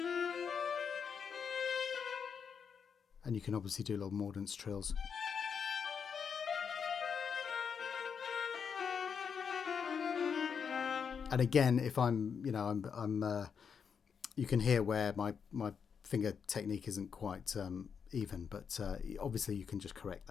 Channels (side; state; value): right; quieter; 6.6 dB